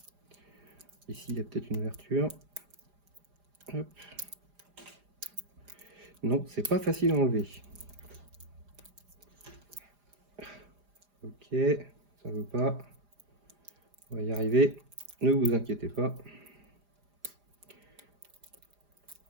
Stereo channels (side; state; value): left; late; 4.9 ms